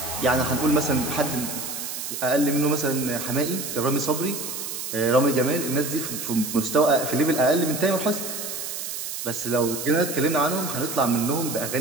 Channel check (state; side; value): noise; right; hiss, 6 dB below the sound